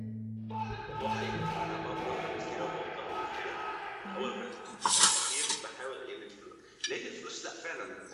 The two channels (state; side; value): identical; both; correlation 1.00